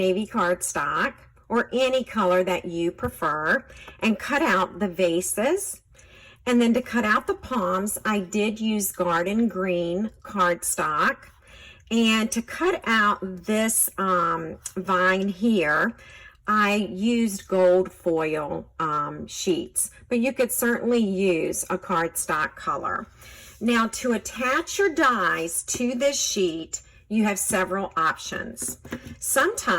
cardstock, or any color that you prefer, and cut out the vases. And then to cut out the palms, I did use garden green cardstock. And to cut out this vine here, I used gold foil sheets, but you could certainly use a cardstock color. Now, to attach your dies to this sheet, you have several options.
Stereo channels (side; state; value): both; identical; correlation 1.00